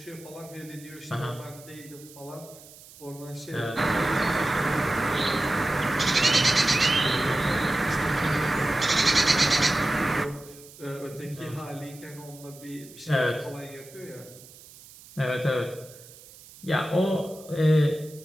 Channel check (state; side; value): noise; right; hiss, 21 dB below the sound